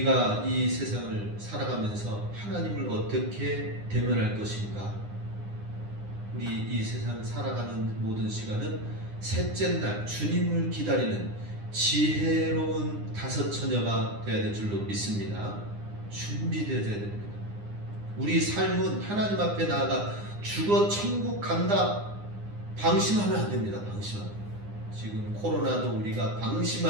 이 세상을 살아가면서 하나님을 어떻게 대면할 것인가? 우리 이 세상 살아가는 모든 시간은 셋째 날 주님을 기다리는 지혜로운 다섯 처녀가 되어야 될 줄로 믿습니다. 준비되어야 됩니다. 우리 삶은 하나님 앞에 나아가 죽어 천국 간다 방심하면 안 됩니다. 방심하면. 지금 코로나도 우리가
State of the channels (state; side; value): late; left; 9.8 ms